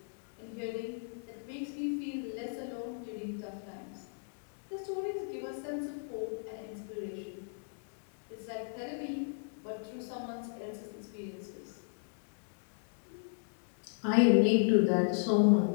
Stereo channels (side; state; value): right; silent; digital silence